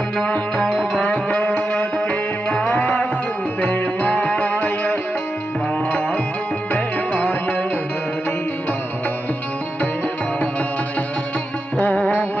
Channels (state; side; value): normal; both; correlation 0.89